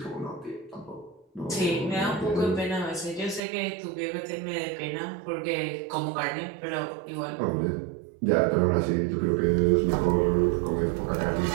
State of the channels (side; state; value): left; drops out; at 3.4 s